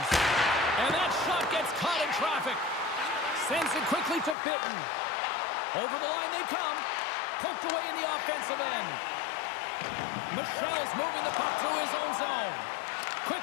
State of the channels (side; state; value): right; drops out; at 4.4 s